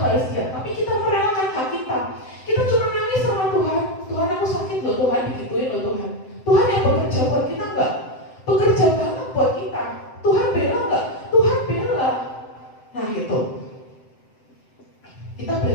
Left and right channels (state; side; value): late; right; 7.7 ms